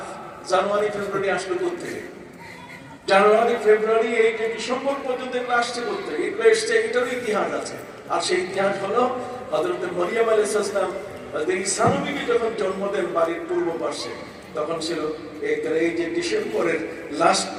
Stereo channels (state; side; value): identical; both; correlation 1.00